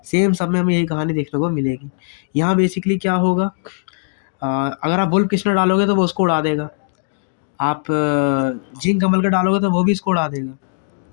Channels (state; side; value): silent; right; digital silence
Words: सेम सब में हमें यही कहानी देखने को मिलेगी। यहाँ बेसिकली क्या होगा, अगर आप वुल्फ किस्नर डालोगे तो वो उसको उड़ा देगा, आप जिंक कमल का डालोगे तो वो भी इसको उड़ा देगा,